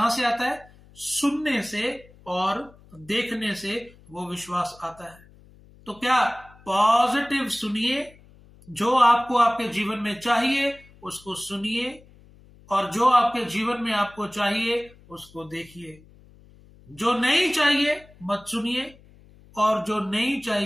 से आता है? सुनने से और देखने से वो विश्वास आता है। तो क्या पॉजिटिव सुनिए, जो आपको आपके जीवन में चाहिए उसको सुनिए, और जो आपके जीवन में आपको चाहिए उसको देखिए। जो नहीं चाहिए मत सुनिए, और जो नहीं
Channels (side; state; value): left; noise; hum, 25 dB below the sound